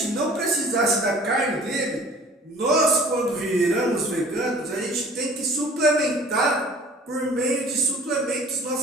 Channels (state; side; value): normal; both; correlation 0.49